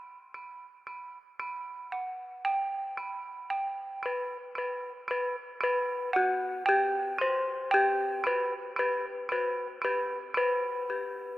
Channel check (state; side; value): normal; both; correlation 0.95